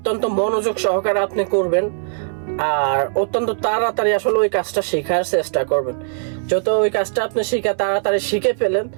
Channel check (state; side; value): silent; left; 66 dB below the other